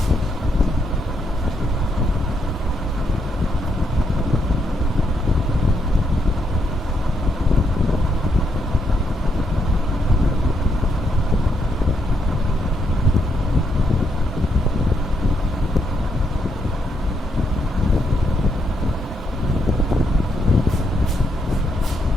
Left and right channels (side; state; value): both; normal; correlation 0.78